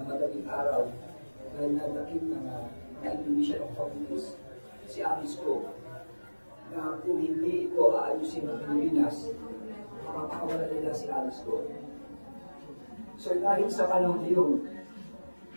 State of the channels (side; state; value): both; inverted; correlation -1.00